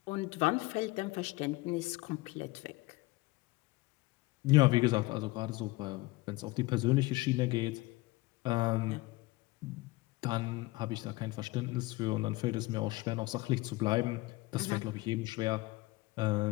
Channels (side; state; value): right; quieter; 20.7 dB